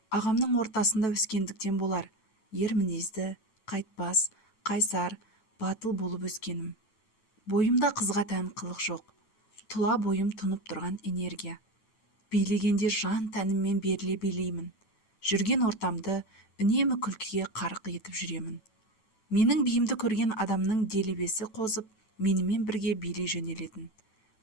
ағамның ортасында өскендіктен болар, ер мінезді, қайтпас, қайсар, батыл болып өскенім. Бойымда қызға тән қылық жоқ, тұла бойым тұнып тұрған энергия. Билегенде жан тәніммен беріле билеймін. Жүрген ортамды үнемі күлкіге қарық етіп жүремін. Менің биімді көрген адамның делебесі қозып, менімен бірге билей жөнелетін.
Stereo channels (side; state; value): right; late; 9.1 ms